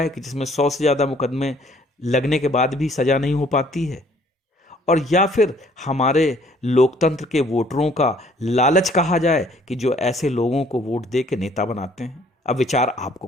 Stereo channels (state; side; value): normal; both; correlation 0.60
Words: कि जिसमें 100 से ज़्यादा मुकदमे लगने के बाद भी सजा नहीं हो पाती है, और या फिर हमारे लोकतंत्र के वोटरों का लालच कहा जाए कि जो ऐसे लोगों को वोट दे के नेता बनाते हैं। अब विचार आपको